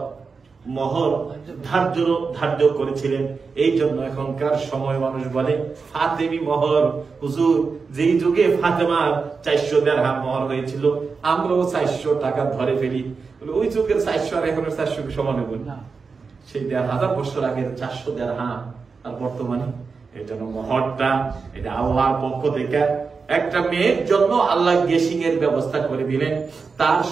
মোহর ধার্য করেছিলেন। এই জন্য এখনকার সময় মানুষ বলে ফাতেমি মোহর। হুজুর, যেই যুগে ফাতেমার 400 দিরহাম মোহর হয়েছিল, আমরাও 400 টাকা ধরে ফেলি। ওই যুগের 400 আর এখনের 400 সমান হবে না। সেই 1000 বছর আগের 400 দিরহাম আর বর্তমানে। এই জন্য মোহরটা এটা আল্লাহর পক্ষ থেকে একটা মেয়ের জন্য আল্লাহ গেসিং এর ব্যবস্থা করে দিলেন, তার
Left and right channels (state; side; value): quieter; left; 4.9 dB